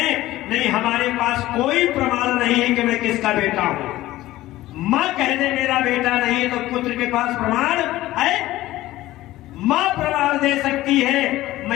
नहीं हमारे पास कोई प्रमाण नहीं है कि मैं किसका बेटा हूं। मां कह दे मेरा बेटा नहीं है तो पुत्र के पास प्रमाण है, मां प्रमाण दे सकती है।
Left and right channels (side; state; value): right; quieter; 16.2 dB